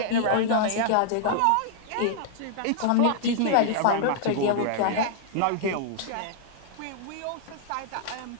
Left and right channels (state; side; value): different; both; correlation -0.01